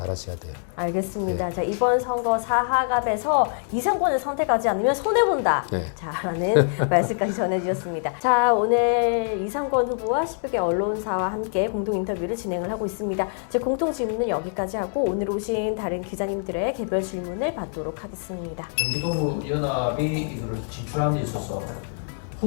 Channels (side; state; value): right; silent; digital silence